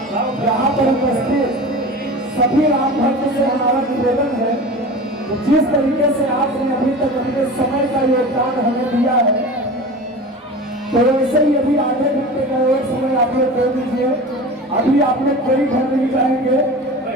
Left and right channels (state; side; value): normal; both; correlation 0.34